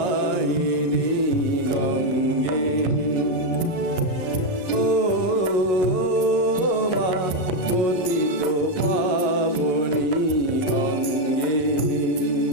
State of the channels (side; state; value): right; late; 11 ms